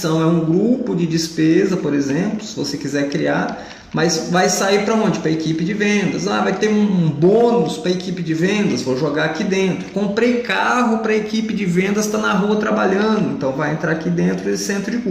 é um grupo de despesa, por exemplo, se você quiser criar, mas vai sair para onde? Para a equipe de vendas. Vai ter um bônus para a equipe de vendas, vou jogar aqui dentro. Comprei carro para a equipe de vendas, está na rua trabalhando, então vai entrar aqui dentro desse centro de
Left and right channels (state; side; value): identical; both; correlation 1.00